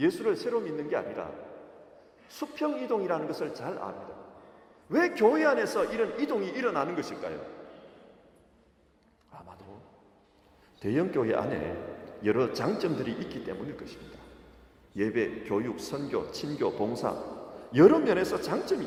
새로 믿는 게 아니라 수평이동이라는 것을 잘 압니다. 왜 교회 안에서 이런 이동이 일어나는 것일까요? 아마도 대형 교회 안에 여러 장점들이 있기 때문일 것입니다. 예배, 교육, 선교, 친교, 봉사 여러 면에서 장점이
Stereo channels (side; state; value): both; identical; correlation 1.00